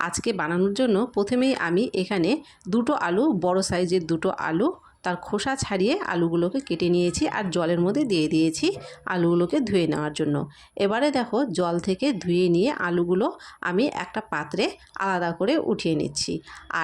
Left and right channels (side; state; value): both; identical; correlation 1.00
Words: আজকে বানানোর জন্য প্রথমেই আমি এখানে দুটো আলু, বড় সাইজের দুটো আলু, তার খোসা ছাড়িয়ে আলুগুলোকে কেটে নিয়েছি আর জলের মধ্যে দিয়ে দিয়েছি আলুগুলোকে ধুয়ে নেওয়ার জন্য। এবারে দেখো, জল থেকে ধুয়ে নিয়ে আলুগুলো আমি একটা পাত্রে আলাদা করে উঠিয়ে নিচ্ছি।